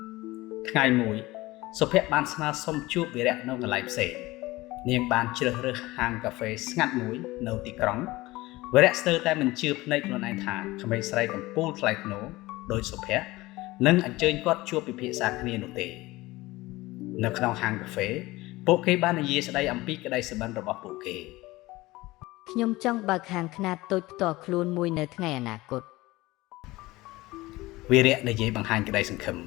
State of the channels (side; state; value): right; quieter; 19.7 dB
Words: ថ្ងៃមួយសុភ័ក្របានស្នើសុំជួបវីរៈនៅកន្លែងផ្សេងនាងបានជ្រើសរើសហាងកាហ្វេស្ងាត់មួយនៅទីក្រុងវីរៈស្ទើរតែមិនជឿភ្នែកខ្លួនឯងថាក្មេងស្រីកំពូលថ្លៃថ្នូរដោយសុភ័ក្រនឹងអញ្ជើញគាត់ជួបពិភាក្សាគ្នានោះទេនៅក្នុងហាងកាហ្វេពួកគេបាននិយាយស្ដីអំពីក្តីសុបិនរបស់ពួកគេខ្ញុំចង់បើកហាងខ្នាតតូចផ្ទាល់ខ្លួនមួយនៅថ្ងៃអនាគតវីរៈនិយាយបង្ហាញក្តីសង្ឃឹម